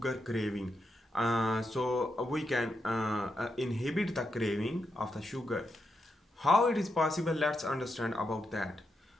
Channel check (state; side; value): normal; both; correlation 0.84